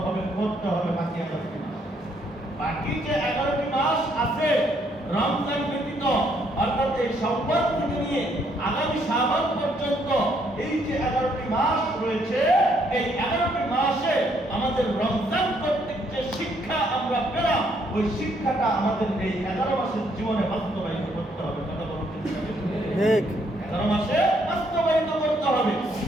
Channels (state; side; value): normal; both; correlation 0.70